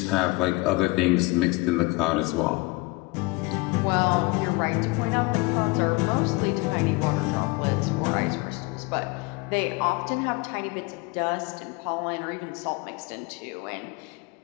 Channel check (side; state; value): right; quieter; 24.1 dB